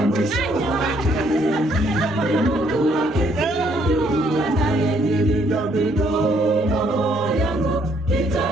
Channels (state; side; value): normal; both; correlation 0.68